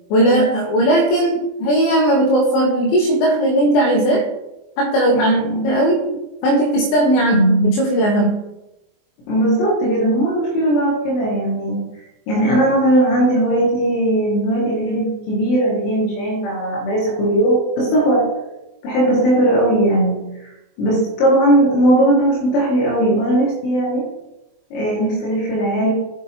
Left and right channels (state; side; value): late; right; 24 ms